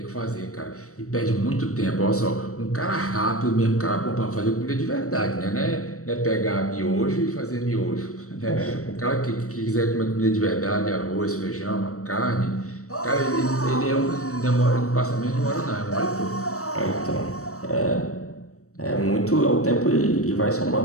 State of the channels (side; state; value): right; late; 0.65 ms